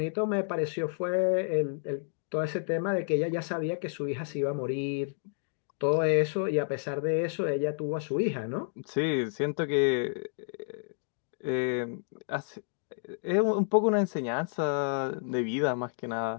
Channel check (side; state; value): right; silent; digital silence